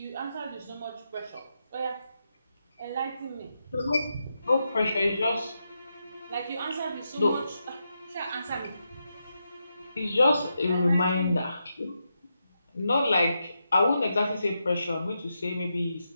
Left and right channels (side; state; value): both; inverted; correlation -0.85